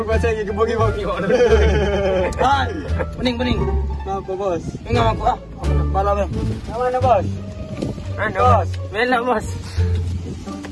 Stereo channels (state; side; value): identical; both; correlation 1.00